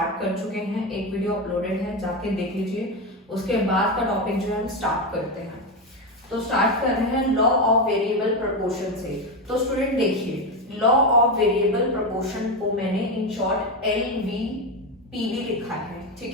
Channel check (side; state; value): both; normal; correlation 0.13